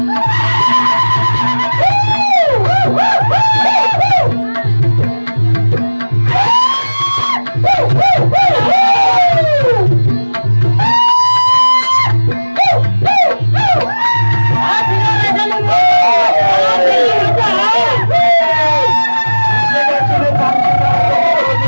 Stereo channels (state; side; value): inverted; both; correlation -1.00